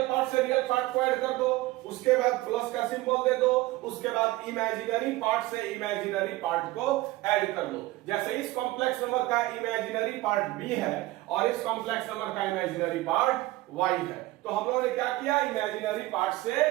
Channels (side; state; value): left; quieter; 18.5 dB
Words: पार्ट से रियल पार्ट को ऐड कर दो, उसके बाद प्लस का सिंबल दे दो, उसके बाद इमेजिनरी पार्ट से इमेजिनरी पार्ट को ऐड कर दो। जैसे इस कॉम्प्लेक्स नंबर का इमेजिनरी पार्ट B है और इस कॉम्प्लेक्स नंबर का इमेजिनरी पार्ट Y है। तो हम लोगों ने क्या किया? इमेजिनरी पार्ट से